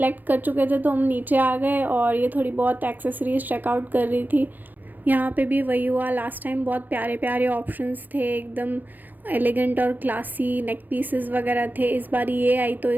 कर चुके थे तो हम नीचे आ गए, और ये थोड़ी बहुत एक्सेसरीज़ चेकआउट कर रही थी। यहाँ पे भी वही हुआ, लास्ट टाइम बहुत प्यारे प्यारे ऑप्शंस थे, एकदम एलिगेंट और क्लासी नेक पीसेस वगैरह थे। इस बार ये आई तो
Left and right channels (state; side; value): late; left; 0.086 ms